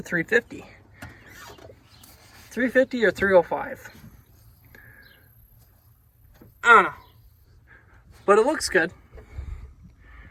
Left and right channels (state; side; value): identical; both; correlation 1.00